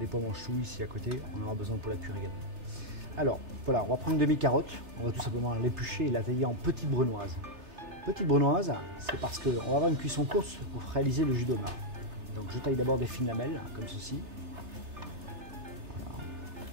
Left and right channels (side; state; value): left; late; 3.4 ms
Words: pois mange-tout ici à côté, on aura besoin pour la cuire également. Alors, voilà, on va prendre une demi-carotte, on va tout simplement l'éplucher et la tailler en petites brunoises. Petite brunoise, c'est parce qu'on va avoir une cuisson courte pour réaliser le jus d'homard. Donc je taille d'abord des fines lamelles, comme ceci. Voilà.